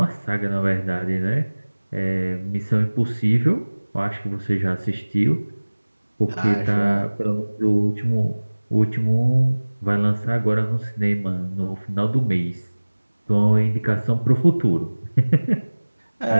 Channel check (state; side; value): inverted; both; correlation -1.00